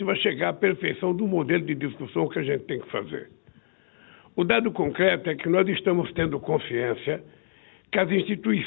vai chegar à perfeição do modelo de discussão que a gente tem que fazer. O dado concreto é que nós estamos tendo consciência que as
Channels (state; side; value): silent; right; digital silence